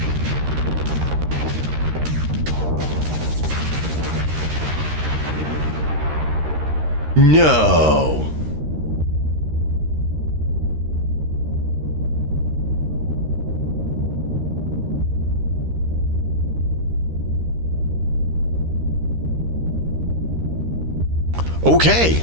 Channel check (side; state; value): left; late; 13 ms